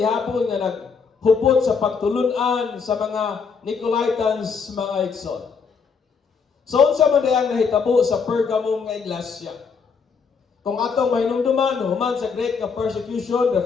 nga naghupot sa pagtulunan sa mga Nicolaitans, mga igsoon. So unsa man dayang nahitabo sa Pergamum nga iglesia? Kung atong mahinumduman human sa great nga persecution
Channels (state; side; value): quieter; right; 5.6 dB